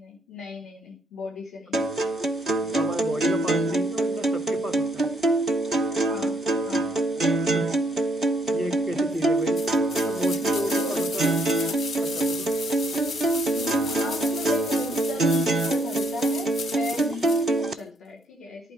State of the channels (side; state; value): both; normal; correlation 0.70